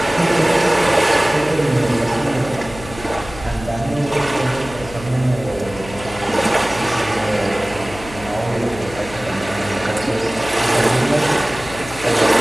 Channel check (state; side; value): noise; left; hum, 15 dB below the sound